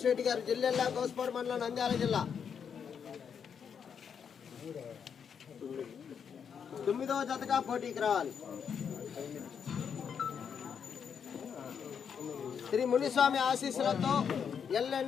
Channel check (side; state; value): right; quieter; 7.2 dB